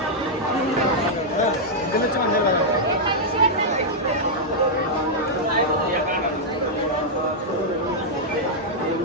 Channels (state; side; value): normal; both; correlation -0.06